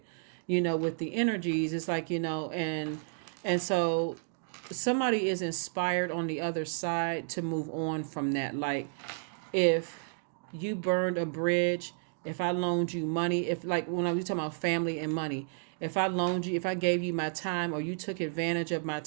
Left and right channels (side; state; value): left; silent; digital silence